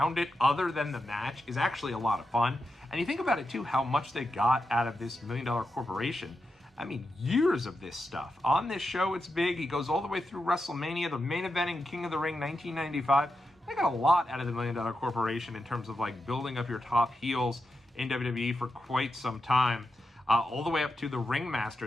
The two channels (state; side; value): normal; both; correlation 0.88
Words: it, other than the match, is actually a lot of fun. And you think about it, too, how much they got out of this $1 Million Corporation. I mean, years of this stuff. On this show, it's big. He goes all the way through WrestleMania, the main event in King of the Ring 1995. They got a lot out of the $1 Million Corporation in terms of like building up your top heels in WWE for quite some time. All the way up to the